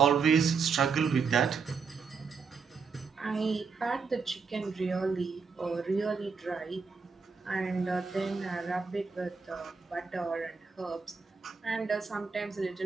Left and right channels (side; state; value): left; quieter; 5.3 dB